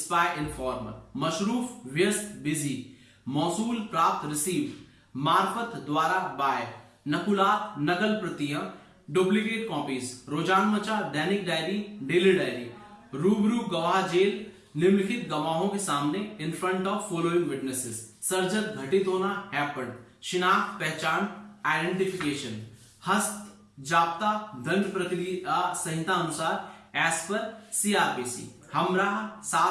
इन्फॉर्मर। मशरूफ व्यस्त, बिजी। मौसूल प्राप्त, रिसीव। मार्फत द्वारा, बाय। नकुलात नकल प्रतियां, डुप्लीकेट कॉपीज। रोजानमचा दैनिक डायरी, डेली डायरी। रूबरू गवाह जेल, निम्नलिखित गवाहों के सामने, in front of following witnesses. सर्जक घटित होना, हैपेंड। शिनाख्त पहचान आइडेंटिफिकेशन, हस्त जाप्ता दंड प्रक्रिया संहिता अनुसार एज पर CRPC, हमराह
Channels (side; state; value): both; identical; correlation 1.00